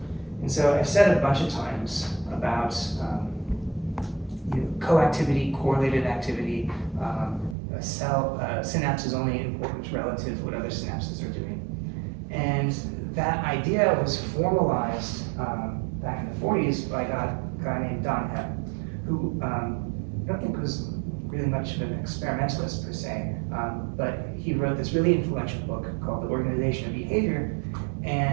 And so I've said a bunch of times about coactivity, correlated activity. A synapse is only important relative to what other synapses are doing. And that idea was formalized back in the 40s by a guy named Don Hepp, who I don't think was really much of an experimentalist per se, but he wrote this really influential book called The Organization of Behavior,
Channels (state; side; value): drops out; left; at 7.6 s